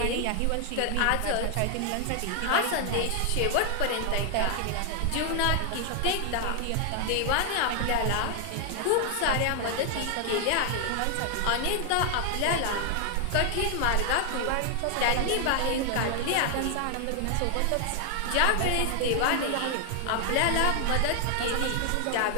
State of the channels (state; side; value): different; both; correlation 0.00